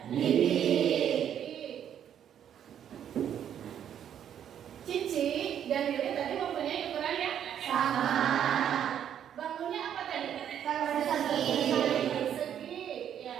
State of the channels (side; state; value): left; quieter; 9.5 dB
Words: Bibi. Cici dan Lili tadi mempunyai ukuran yang sama. Bangunnya apa tadi? Persegi,